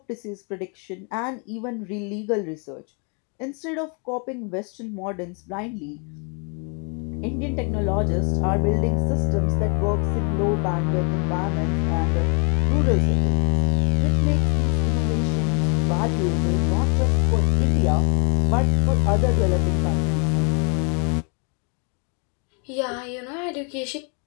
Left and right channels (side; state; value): right; quieter; 36.4 dB